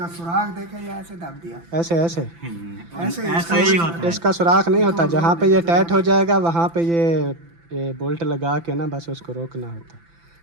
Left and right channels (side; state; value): left; late; 5.9 ms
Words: सुराख देखे या ऐसे दब दिया, ऐसे ऐसे ऐसे ही होता है। इसका सुराख नहीं होता, जहाँ पे ये टाइट हो जाएगा वहाँ पे ये बोल्ट लगा के ना बस उसको रोकना होता,